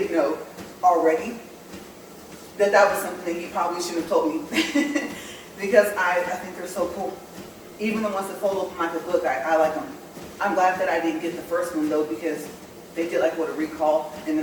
know already, that was something that he probably should have told me. Because I think they're so cool. Even the ones that fold open like a book, I like them. I'm glad that I didn't get the first one though, because they did like what, a recall, and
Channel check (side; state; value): both; identical; correlation 1.00